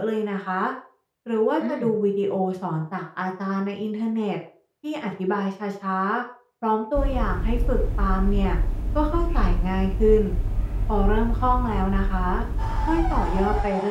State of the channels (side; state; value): both; identical; correlation 1.00